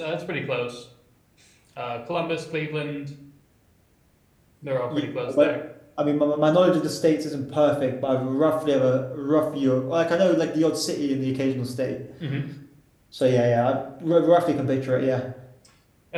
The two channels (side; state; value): both; identical; correlation 1.00